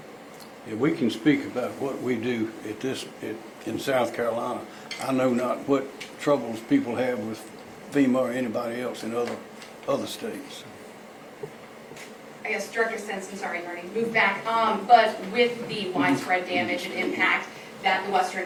Yeah, we can speak about what we do in South Carolina. I know not what troubles people have with FEMA or anybody else in other states. I guess Director Stenson, sorry, Marty, move back. But with the widespread damage and impact that the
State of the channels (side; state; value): both; identical; correlation 1.00